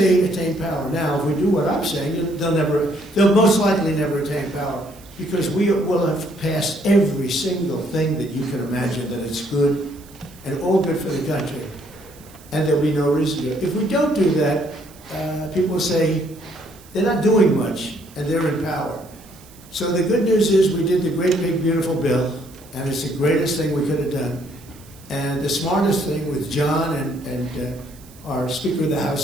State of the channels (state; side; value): noise; right; hiss, 24 dB below the sound